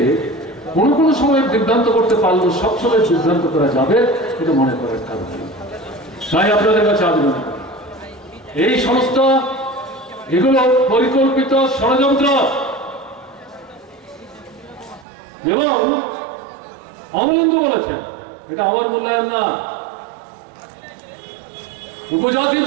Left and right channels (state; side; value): drops out; left; at 15.1 s